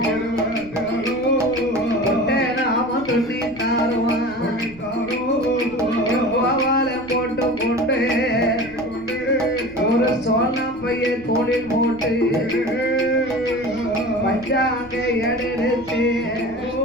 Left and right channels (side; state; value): right; noise; rumble, 23 dB below the sound